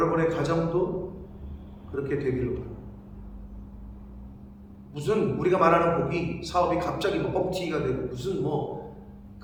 가정도 그렇게 되기를 바랍니다. 무슨 우리가 말하는 복이 사업이 갑자기 뭐 뻥튀기가 되고 무슨 뭐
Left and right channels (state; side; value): identical; both; correlation 1.00